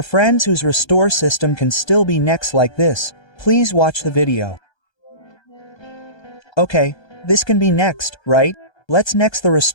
friends whose restore system can still be next like this, please watch the video. Okay, this can be next, right? Let's next the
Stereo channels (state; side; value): late; right; 1.3 ms